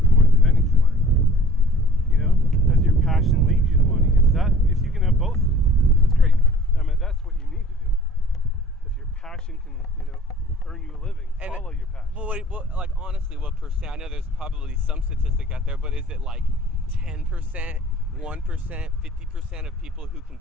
more than anything. Does your passion lead you to money? If you can have both, that's great. I mean, that's what you need to do. If your passion can, earn you a living, follow your passion. Well, like, honestly, what percent? I know there's probably some statistic out there, but is it like 10%, 1%, 50% of people who can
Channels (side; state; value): both; normal; correlation 0.48